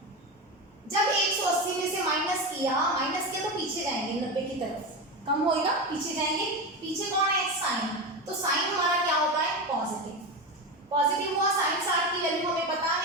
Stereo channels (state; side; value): normal; both; correlation 0.19